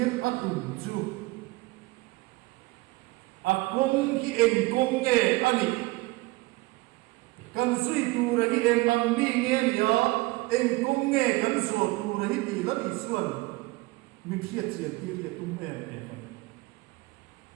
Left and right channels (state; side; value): quieter; left; 22.0 dB